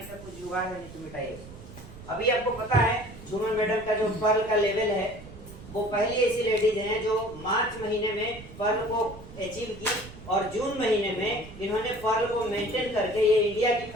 का कुछ जुगाड़ है, नहीं तो मिटाइए उसको। अभी आपको पता है झूमर मैडम का जो पर्ल का लेवल है, वो पहली ऐसी लेडीज हैं जो मार्च महीने में पर्ल को अचीव की, और जून महीने में इन्होंने पर्ल को मेंटेन करके ये इंडिया की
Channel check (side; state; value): right; noise; rumble, 16 dB below the sound